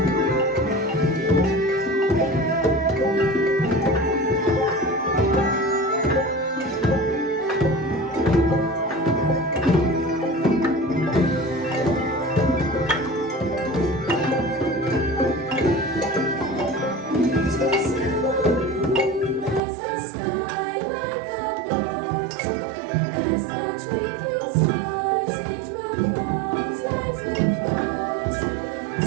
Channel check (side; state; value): left; drops out; at 19.6 s